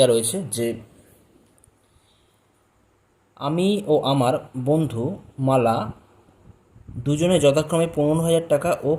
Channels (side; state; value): both; identical; correlation 1.00